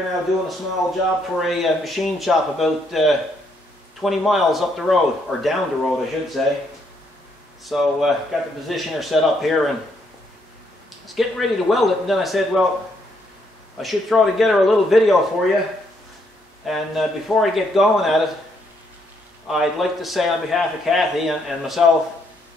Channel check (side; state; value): both; normal; correlation 0.73